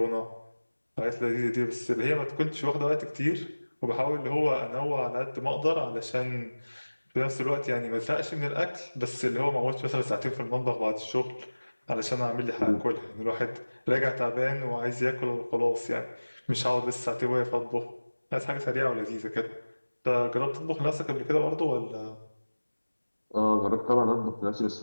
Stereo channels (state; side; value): inverted; both; correlation -1.00